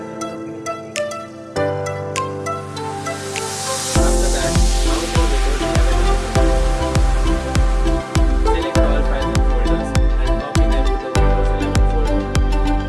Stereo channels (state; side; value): identical; both; correlation 1.00